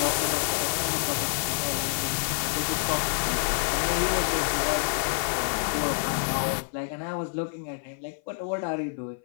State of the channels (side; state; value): right; silent; 56 dB below the other